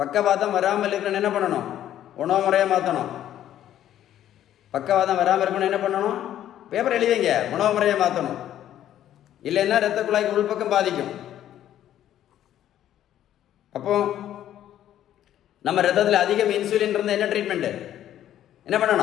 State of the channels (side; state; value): right; quieter; 11.6 dB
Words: வராமல் இருக்கணும் என்ன பண்ணணும்? உணவு முறையை மாற்றணும். பக்கவாதம் வராமல் இருக்கணும் என்ன பண்ணணும்? பேப்பர் எழுதிங்க, உணவு முறையை மாற்றணும். இல்லைன்னா இரத்த குழாய்க்கு உள்பக்கம் பாதிக்கும். அப்போ நம்ம ரத்தத்தில் அதிகம் இன்சுலின் இருந்தால் என்ன ட்ரீட்மெண்ட்டு? என்ன